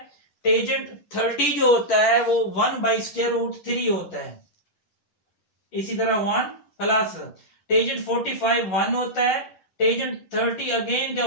टेंजेंट 30 जो होता है वो 1 बाई स्क्वायर रूट 3 होता है। इसी तरह 1 प्लस टेंजेंट 45 1 होता है, टेंजेंट 30 अगेन क्या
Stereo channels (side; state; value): right; late; 11 ms